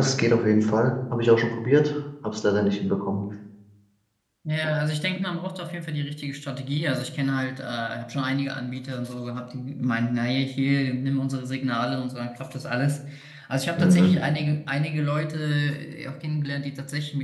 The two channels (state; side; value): identical; both; correlation 1.00